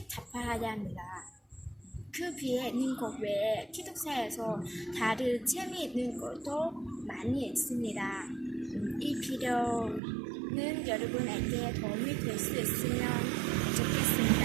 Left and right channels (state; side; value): drops out; left; at 10.0 s